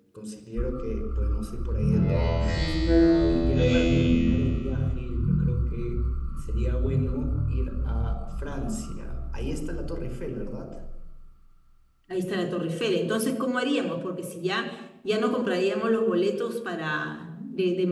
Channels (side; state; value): both; identical; correlation 1.00